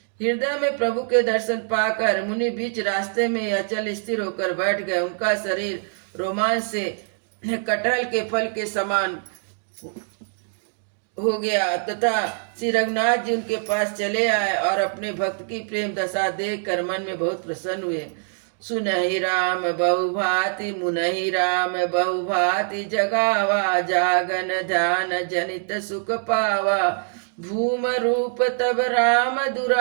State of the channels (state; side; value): silent; left; digital silence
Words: हृदय में प्रभु के दर्शन पाकर मुनि बीच रास्ते में अचल स्थिर होकर बैठ गए। उनका शरीर रोमांच से कटहल के फल के समान हो गया तथा श्री रघुनाथ जी उनके पास चले आए और अपने भक्त की प्रेम दशा देखकर मन में बहुत प्रसन्न हुए। सुनहि राम बहुभाति मुनहि राम बहुभाति जगावा, जागन ध्यान जनित सुख पावा। भूम रूप तब राम